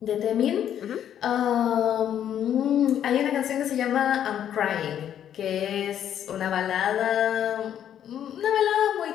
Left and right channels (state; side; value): quieter; right; 10.0 dB